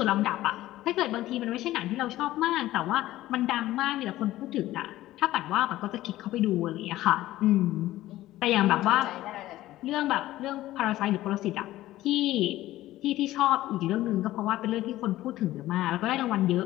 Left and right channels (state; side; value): quieter; right; 15.5 dB